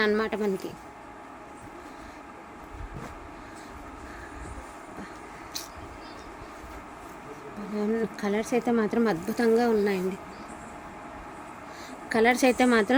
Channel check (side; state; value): both; identical; correlation 1.00